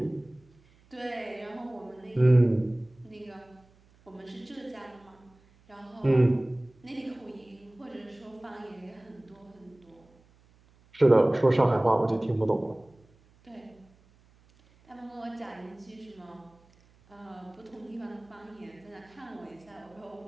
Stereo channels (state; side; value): noise; right; hum, 30 dB below the sound